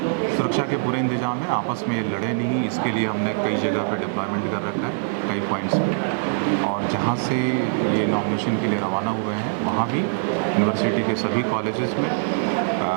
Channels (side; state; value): left; silent; 63 dB below the other